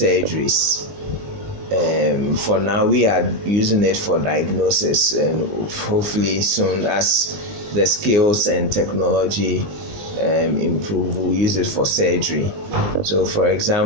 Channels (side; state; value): left; late; 20 ms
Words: For now, we are using it for diagnosis, and hopefully soon, as the skills and technology improve, we'll use it for surgery. So, for